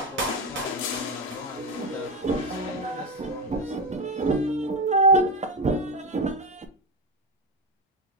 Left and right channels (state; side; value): normal; both; correlation 0.14